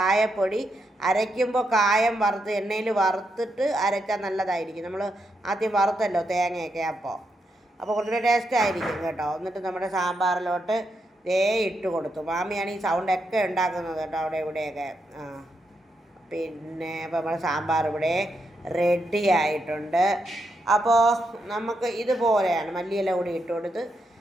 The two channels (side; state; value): both; normal; correlation 0.82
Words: അരയ്ക്കുമ്പോൾ കായം വറുത്ത് എണ്ണയിൽ വറുത്തിട്ട് അരച്ചാൽ നല്ലതായിരിക്കും. നമ്മൾ ആദ്യം വറുത്തല്ലോ തേങ്ങയൊക്കെ, അപ്പോൾ കുറച്ചുകൂടെ ടേസ്റ്റ് ആയിരിക്കും കേട്ടോ. എന്നിട്ട് നമ്മുടെ സാമ്പാറിലോട്ട് ഇട്ട് കൊടുത്തു. മാമിയാണ് ഈ സൗണ്ടൊക്കെ ഉണ്ടാക്കുന്നത് കേട്ടോ അവിടെ ഇവിടെയൊക്കെ. പിന്നെ അപ്പോൾ നമ്മുടെ സാമ്പാർ ഇവിടെ റെഡി ആയിട്ടുണ്ട്. അപ്പോൾ നമുക്ക് ഇതുപോലെയാണ് മല്ലിയില കൂടി ഇട്ട് കൊടുത്ത്